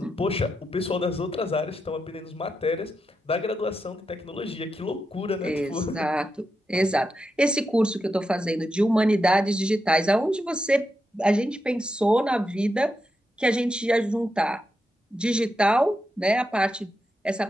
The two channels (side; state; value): both; normal; correlation 0.86